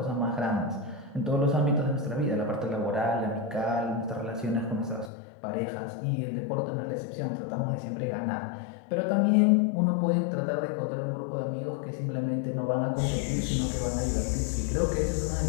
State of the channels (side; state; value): right; drops out; at 5.1 s